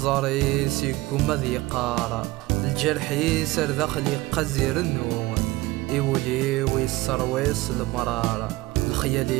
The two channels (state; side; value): quieter; left; 19.6 dB